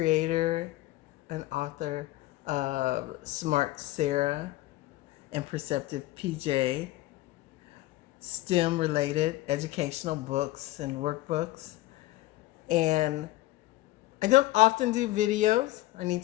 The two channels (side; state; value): right; quieter; 17.3 dB